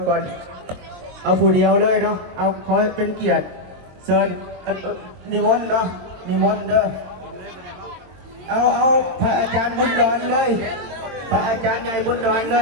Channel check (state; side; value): late; left; 23 ms